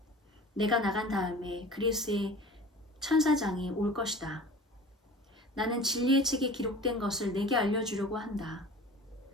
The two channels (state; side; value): normal; both; correlation 0.41